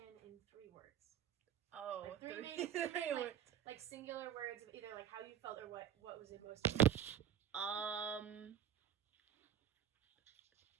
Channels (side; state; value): left; quieter; 9.4 dB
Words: in 3 words? Oh, like three words. Like singular words of either like how you felt or what was it most important?